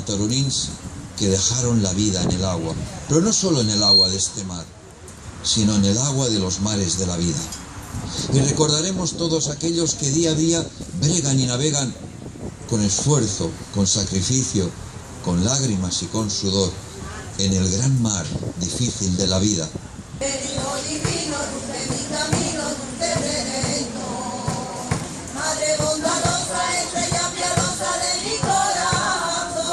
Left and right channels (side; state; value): both; identical; correlation 1.00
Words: que dejaron la vida en el agua, pero no solo en el agua de este mar, sino en el agua de los mares de la vida. Y recordaremos todos aquellos que día a día bregan y navegan con esfuerzo, con sacrificio, con lágrimas y con sudor, en el gran mar difícil de la vida.